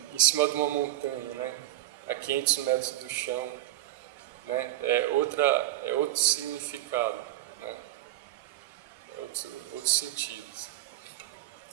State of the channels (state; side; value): quieter; left; 15.1 dB